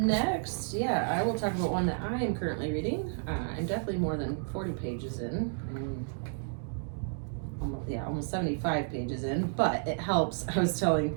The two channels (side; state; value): left; silent; digital silence